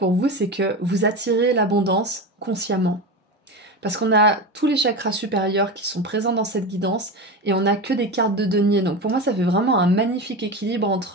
vous, c'est que vous attirez l'abondance consciemment. Parce qu'on a tous les chakras supérieurs qui sont présents dans cette guidance et on n'a que des cartes de denier. Donc pour moi, ça fait vraiment un magnifique équilibre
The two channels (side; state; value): both; normal; correlation 0.23